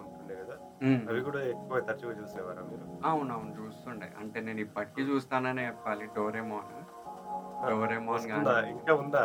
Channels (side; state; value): both; identical; correlation 1.00